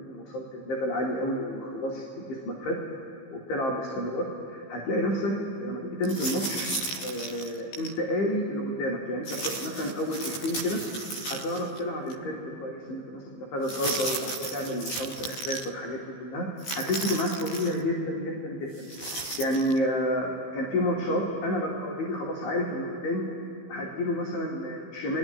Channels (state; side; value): late; right; 15 ms